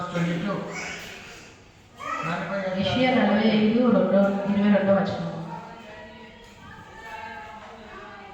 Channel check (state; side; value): identical; both; correlation 1.00